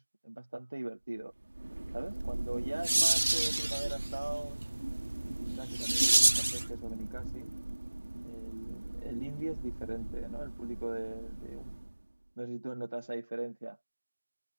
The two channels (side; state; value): both; inverted; correlation -1.00